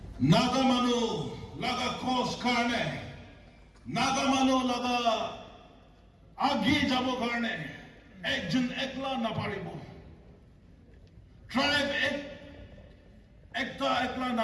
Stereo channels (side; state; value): both; identical; correlation 1.00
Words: Nagamano laga kos karne, Nagamano laga আগে যাব কারণে একজন একলা না পারিব, tribe একটা একলা